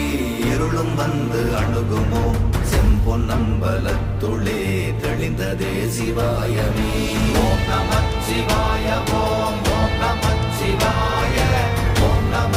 இருளும் வந்து அணுகுமோ? செம்பொன்னம்பலத்துளே தெளிந்ததே சிவாயமே. ஓம் நமச்சிவாய ஓம் ஓம் நமச்சிவாய ஓம்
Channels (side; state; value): both; identical; correlation 1.00